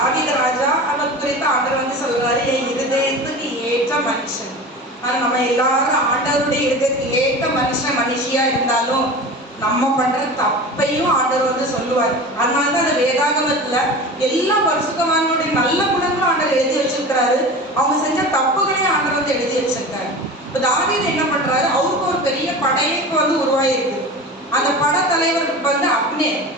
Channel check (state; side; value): normal; both; correlation 0.33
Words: ராஜா அவர் குறித்து ஆண்டவர் வந்து சொல்றாரு, என் இருதயத்துக்கு ஏற்ற மனுஷன். ஆனா நம்ம எல்லாரும் ஆண்டவருடைய இருதயத்துக்கு ஏற்ற மனுஷன் மனுஷியா இருந்தாலும் நம்ம பண்ற தப்பையும் ஆண்டவர் வந்து சொல்லுவார். அதனாலதான் அந்த வேதாகமத்துல எல்லா பரிசுத்தவான்களுடைய நல்ல குணங்களும் ஆண்டவர் எழுதி வச்சிருக்கிறாரு, அவங்க செஞ்ச தப்புகளையும் ஆண்டவர் வந்து எழுதி வச்சிருக்காரு. இப்போ தாவீது என்ன பண்றாரு, அவருக்கு ஒரு பெரிய படையைக்கு வந்து உருவாயிருக்கு. அந்த படைத்தலைவருக்கு வந்து அப்னேர்,